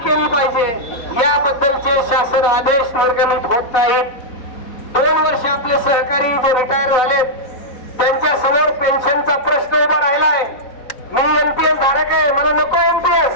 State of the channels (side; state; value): right; late; 4.0 ms